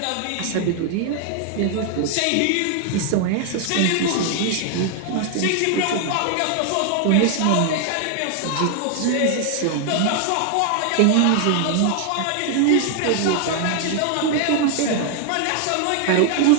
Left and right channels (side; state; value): both; different; correlation 0.00